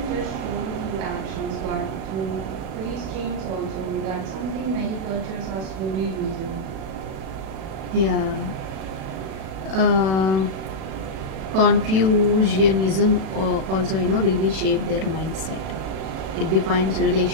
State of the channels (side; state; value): left; late; 37 ms